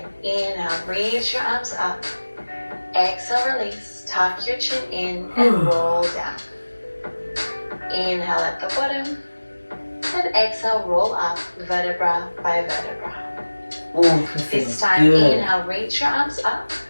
inhale, reach your arms up. Exhale, release, tuck your chin in and roll down. Inhale at the bottom, then exhale, roll up vertebra by vertebra. This time, inhale, reach your arms up.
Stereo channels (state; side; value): inverted; both; correlation -1.00